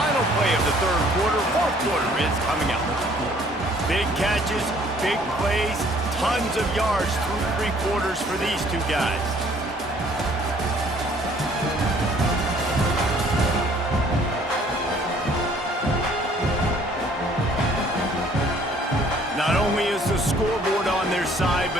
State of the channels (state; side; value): normal; both; correlation 0.58